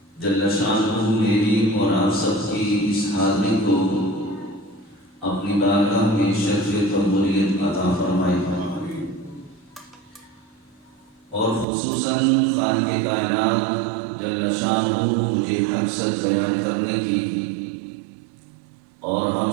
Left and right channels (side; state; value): left; drops out; at 11.7 s